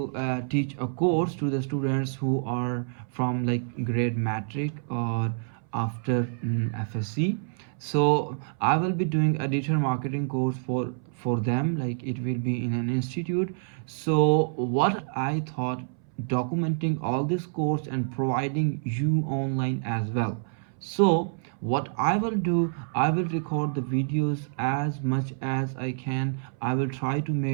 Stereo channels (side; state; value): left; silent; 60 dB below the other